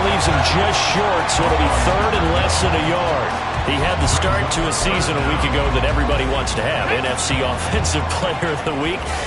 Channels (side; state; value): both; identical; correlation 1.00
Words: leaves him just short, so it'll be 3rd and less than a yard. He had the start to a season a week ago that everybody wants to have. NFC Offensive Player of the Week.